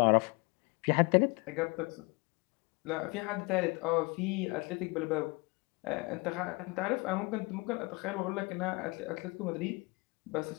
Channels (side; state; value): right; quieter; 27.6 dB